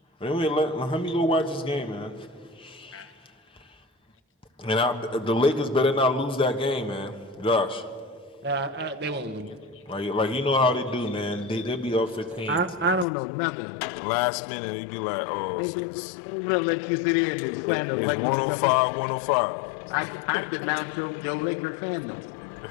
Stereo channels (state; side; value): drops out; right; at 13.1 s